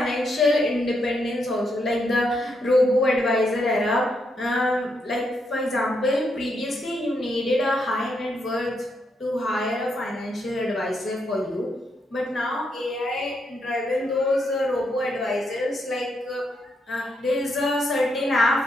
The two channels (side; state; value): both; normal; correlation 0.79